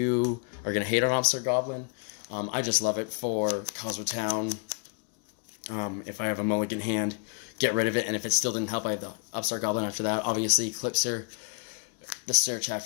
are going to hate on Upstart Goblin. I just love it for Kozmo Town. If I have a mulligan hand, get rid of it, and if it still didn't help, I have the Upstart Goblin after that. Obviously, Eclipser, the search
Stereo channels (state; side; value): quieter; right; 38.4 dB